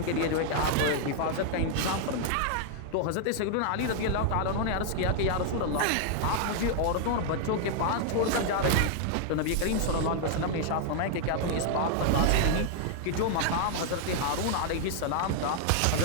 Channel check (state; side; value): different; both; correlation 0.00